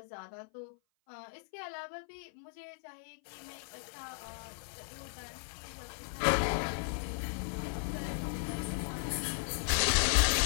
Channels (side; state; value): right; silent; 54 dB below the other